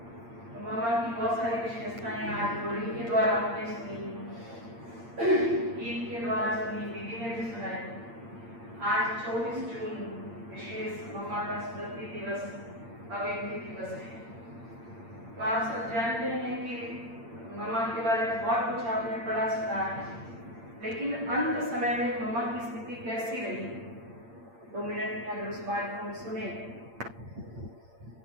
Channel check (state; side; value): late; left; 8.7 ms